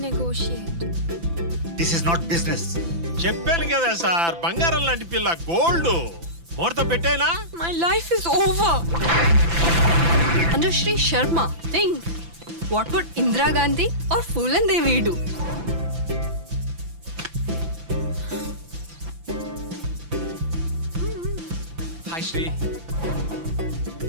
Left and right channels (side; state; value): left; late; 5.9 ms